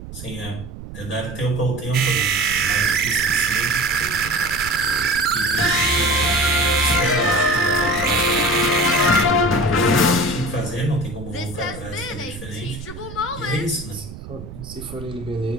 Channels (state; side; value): noise; right; rumble, 13 dB below the sound